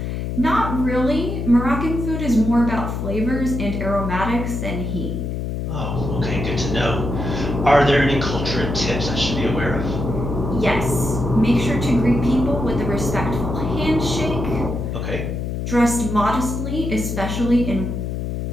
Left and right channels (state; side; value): noise; left; hum, 3 dB below the sound